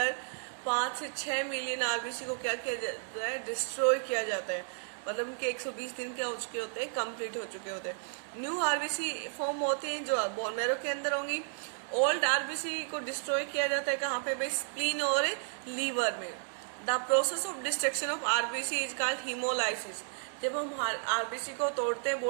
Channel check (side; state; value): left; silent; 56 dB below the other